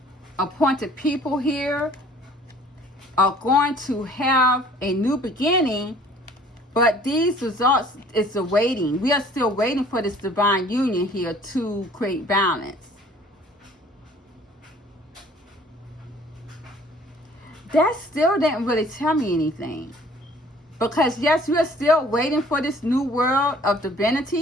appointed people here are going to have a new beginning, but these results is awaiting. We are still waiting for this divine union here to create balance. That still didn't really tell me anything. Because yes, we are still waiting for this new world of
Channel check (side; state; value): both; normal; correlation 0.54